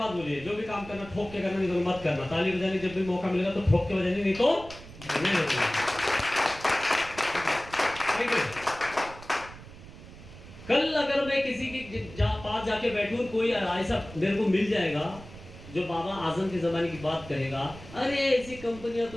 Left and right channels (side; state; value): right; noise; rumble, 17 dB below the sound